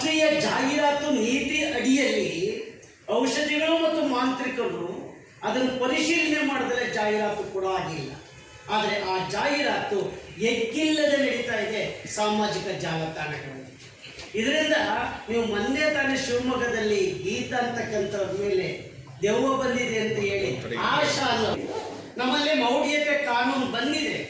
ಜಾಹೀರಾತು ನೀತಿ ಅಡಿಯಲ್ಲಿ ಔಷಧಿಗಳು ಮತ್ತು ಮಾಂತ್ರಿಕರು ಅದನ್ನು ಪರಿಶೀಲನೆ ಮಾಡಿದರೆ ಜಾಹೀರಾತು ಕೂಡ ಆಗಿಲ್ಲ. ಆದರೆ ಆ ಜಾಹೀರಾತು ಎಕ್ಕಿಲ್ಲದೆ ನಡೀತಾ ಇದೆ ಸಾಮಾಜಿಕ ಜಾಲತಾಣಗಳಲ್ಲಿ. ಇದರಿಂದ ನೀವು ಮೊನ್ನೆ ತಾನೇ ಶಿವಮೊಗ್ಗದಲ್ಲಿ ಗೀತ ಅಂತಕ್ಕಂಥವ್ರ ಮೇಲೆ ದೆವ್ವ ಬಂದಿದೆ ಅಂತ ಹೇಳಿ ಆಶಾ ನಮ್ಮಲ್ಲಿ ಮೌಢ್ಯತೆ ಕಾನೂನು ಬಂದಿದೆ,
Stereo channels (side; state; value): both; identical; correlation 1.00